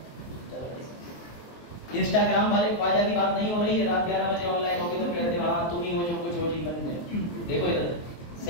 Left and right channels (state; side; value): late; right; 23 ms